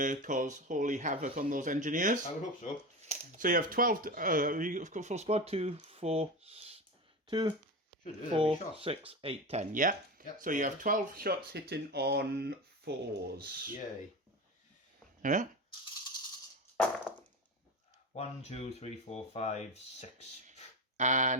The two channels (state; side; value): normal; both; correlation 0.23